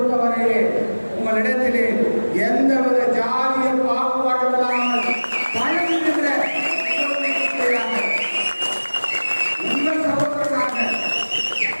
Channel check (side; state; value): both; inverted; correlation -1.00